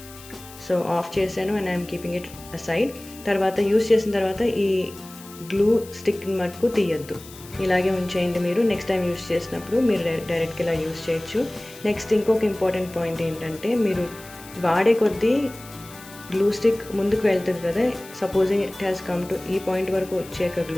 So of చేశాను and I'm keeping it aside. తర్వాత use చేసిన తర్వాత ఈ గ్లూ స్టిక్ మటుకు తీయద్దు, ఇలాగే ఉంచేయండి. మీరు నెక్స్ట్ టైం యూస్ చేసినప్పుడు మీరు డైరెక్ట్గా ఇలా యూస్ చేయొచ్చు. నెక్స్ట్ ఇంకొక ఇంపార్టెంట్ పాయింట్ ఏంటంటే మీరు వాడే కొద్దీ గ్లూ స్టిక్ ముందుకు వెళ్తుంది కదా. Supposing it has come to ఈ పాయింట్ వరకు వచ్చాక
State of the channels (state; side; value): noise; left; hiss, 19 dB below the sound